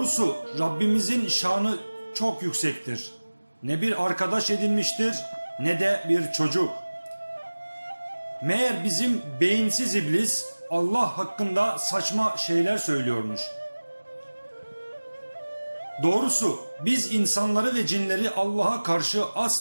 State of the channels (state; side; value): inverted; both; correlation -1.00